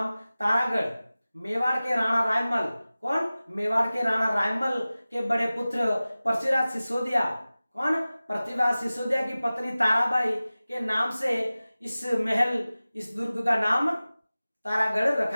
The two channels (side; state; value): both; inverted; correlation -0.97